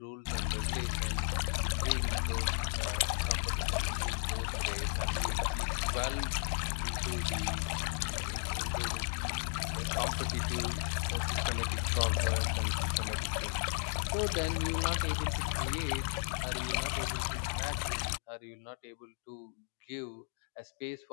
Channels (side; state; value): right; silent; 55 dB below the other